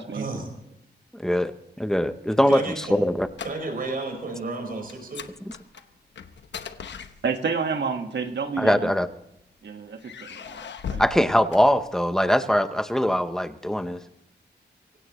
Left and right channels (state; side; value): normal; both; correlation 0.86